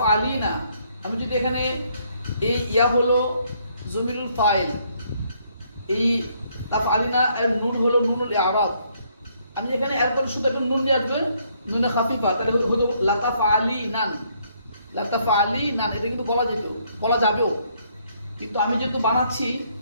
আমি যদি এখানে এই ইয়া হলো জমিরুল ফাইল, এই তাফ আলিনা এর নুন হলো নুনুল ইআরাব। আমি এখানে একদম শুধু একটা নুন নিয়ে আসবে, নুনে খাফিফা, তাহলে হতো লাতাফ আলি নান, লাতাফ আলি নান। এটা কিন্তু বলা যেত, বলা যাবেও, কিন্তু আমি যেহেতু বানাচ্ছি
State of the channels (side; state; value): both; inverted; correlation -0.69